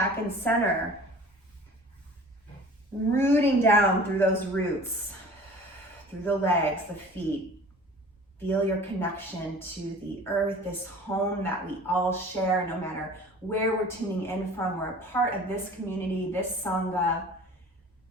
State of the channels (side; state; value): both; normal; correlation 0.44